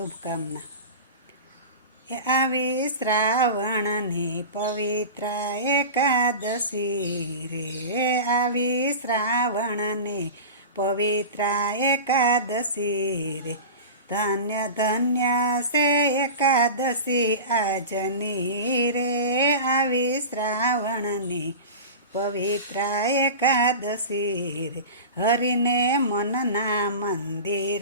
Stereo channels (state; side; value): inverted; both; correlation -0.31